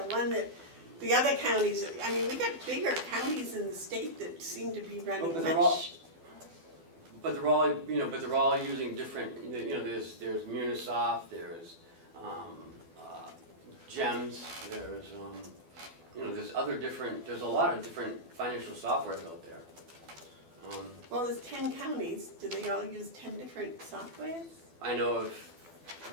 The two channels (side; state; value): left; late; 12 ms